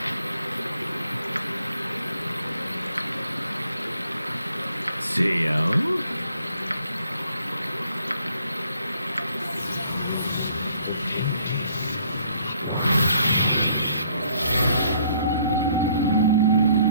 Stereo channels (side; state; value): both; inverted; correlation -0.65